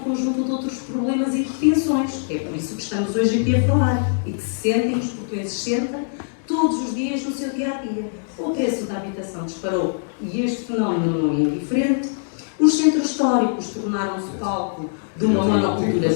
de outros problemas e retenções. É por isso que estamos hoje aqui a falar e que se sentem, os portugueses sentem, todos os dias no seu dia-a-dia. O preço da habitação disparou e este fenómeno não é indiferente. Os centros históricos tornaram-se palco de uma monocultura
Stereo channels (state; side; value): silent; right; 63 dB below the other